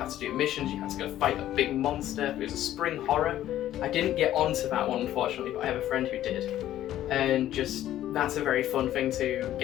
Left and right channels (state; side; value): quieter; right; 12.8 dB